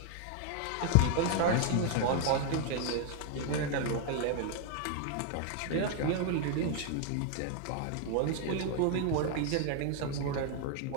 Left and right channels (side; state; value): both; different; correlation 0.00